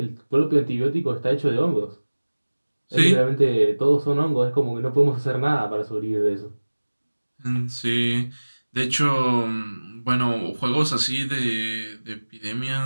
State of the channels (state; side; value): inverted; both; correlation -1.00